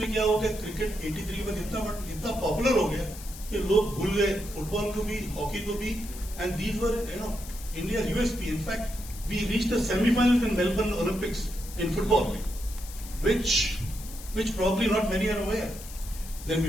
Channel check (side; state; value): left; noise; hiss, 15 dB below the sound